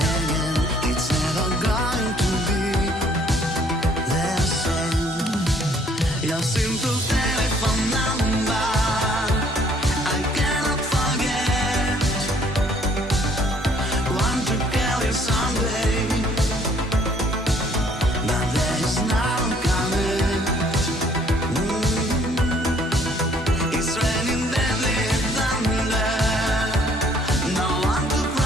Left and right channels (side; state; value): both; normal; correlation 0.61